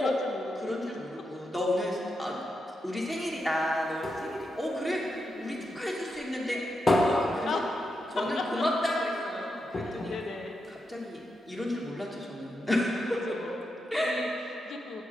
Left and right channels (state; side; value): normal; both; correlation 0.85